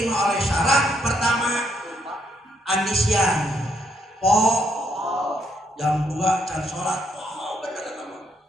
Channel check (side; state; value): both; normal; correlation 0.73